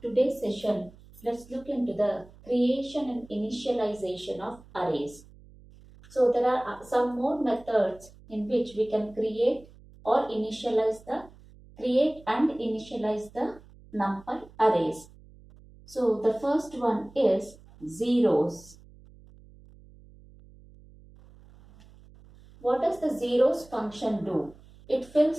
session, let's look into the creation and initialization of arrays. So there are some more methods in which we can create and initialize the NumPy arrays. So the first one is zeros. What does the zeros function do? It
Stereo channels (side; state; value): right; noise; hum, 23 dB below the sound